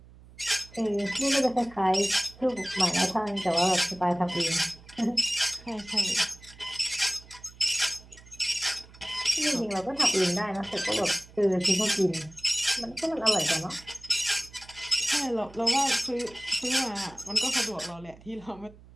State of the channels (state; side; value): noise; right; hum, 22 dB below the sound